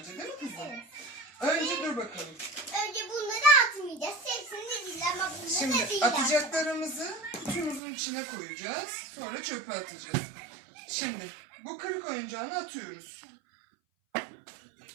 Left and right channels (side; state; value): left; drops out; at 7.8 s